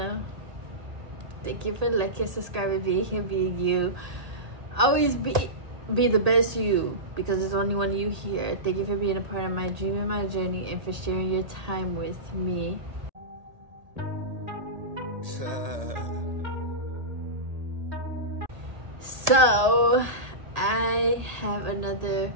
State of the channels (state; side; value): late; left; 1.8 ms